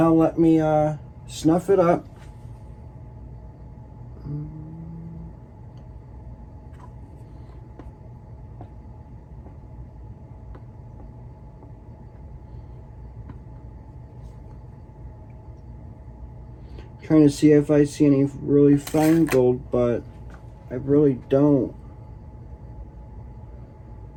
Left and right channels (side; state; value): both; identical; correlation 1.00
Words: let me snuff it up. Trying to see if I see any really fine gold, but I really don't.